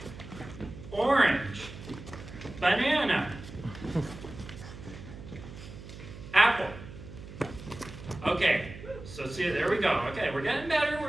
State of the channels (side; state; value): right; noise; hum, 14 dB below the sound